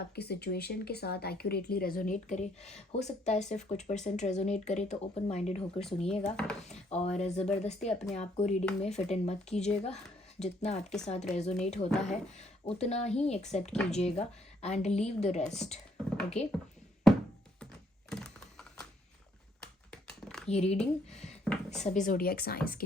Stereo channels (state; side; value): normal; both; correlation 0.68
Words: सिचुएशन के साथ एक्यूरेटली रेजोनेट करे, हो सकता है सिर्फ कुछ परसेंट रेजोनेट करे, तो ओपन माइंडेड होकर सुनिएगा और ज़बरदस्ती अपने आप को रीडिंग में फिट इन मत कीजिएगा। जितना आपके साथ रेजोनेट होता है उतना ही एक्सेप्ट कीजिएगा and leave the rest. Okay, ये रीडिंग सभी ज़ोडिएक साइंस के